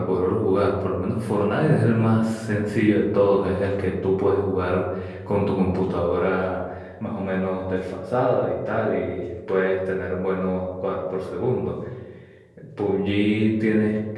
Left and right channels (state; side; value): identical; both; correlation 1.00